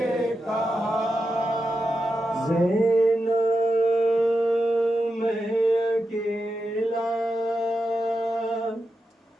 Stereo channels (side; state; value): both; normal; correlation 0.88